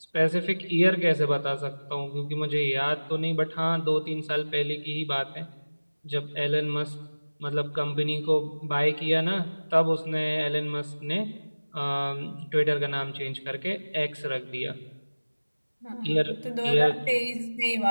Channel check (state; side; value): inverted; both; correlation -1.00